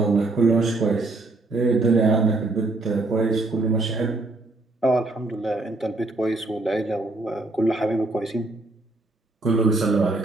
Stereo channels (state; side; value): quieter; left; 3.0 dB